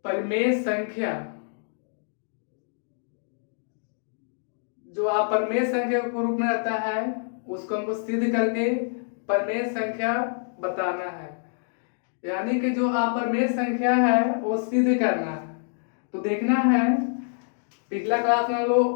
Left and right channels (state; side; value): silent; right; digital silence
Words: परिमेय संख्या। जो अपरिमेय संख्या के रूप में रहता है उसको हमको सिद्ध करके परिमेय संख्या बताना है। यानी कि जो अपरिमेय संख्या है वो सिद्ध करना है। तो देखना है पिछला क्लास में हम